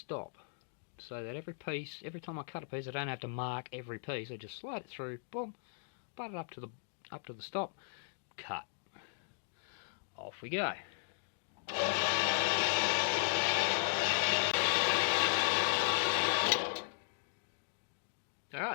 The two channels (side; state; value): right; silent; digital silence